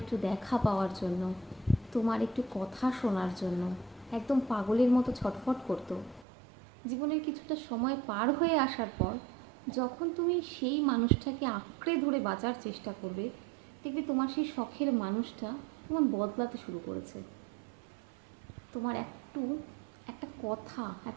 একটু দেখা পাওয়ার জন্য, তোমার একটু কথা শোনার জন্য একদম পাগলের মতো ছটফট করতো, জীবনের কিছুটা সময় পার হয়ে আসার পর যখন তুমি সেই মানুষটাকে আঁকড়ে ধরে বাঁচার চেষ্টা করবে, দেখবে তোমার সেই শখের মানুষটা তোমার বদলাতে শুরু করেছে। তোমার একটা কথা,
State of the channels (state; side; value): drops out; left; at 6.2 s